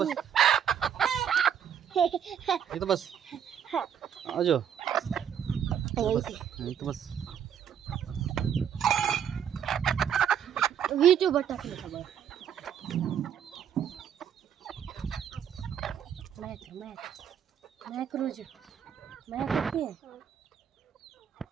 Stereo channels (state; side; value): quieter; left; 8.7 dB